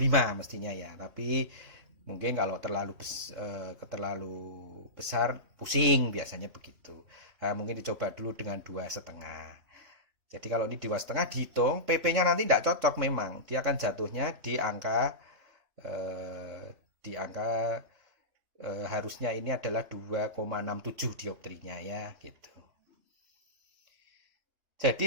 mestinya ya. Tapi mungkin kalau terlalu besar pusing biasanya begitu. Nah, mungkin dicoba dulu dengan 2,5. Jadi kalau ini 2,5 dihitung, PP-nya nanti tidak cocok memang. Dia akan jatuhnya di angka harusnya ini adalah 2,67 dioptrinya ya gitu.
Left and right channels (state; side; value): late; left; 3.3 ms